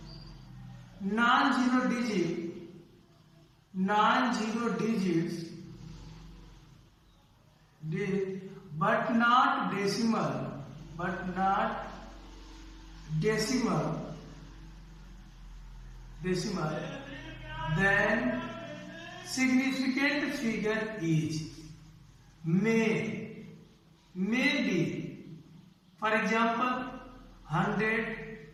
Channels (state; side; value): identical; both; correlation 1.00